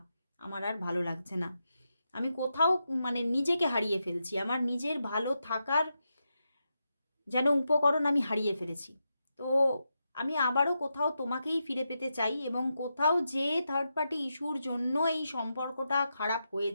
আমার আর ভালো লাগছে না। আমি কোথাও মানে নিজেকে হারিয়ে ফেলছি, আমার নিজের ভালো থাকার যেন উপকরণ আমি হারিয়ে ফেলেছি। তো আমি আবারও কোথাও তোমাকেই ফিরে পেতে চাই, এবং কোথাও যে থার্ড পার্টি ইস্যুর জন্য এই সম্পর্কটা খারাপ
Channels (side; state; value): both; inverted; correlation -0.87